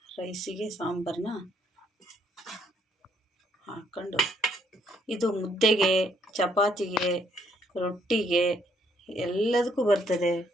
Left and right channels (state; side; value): normal; both; correlation 0.69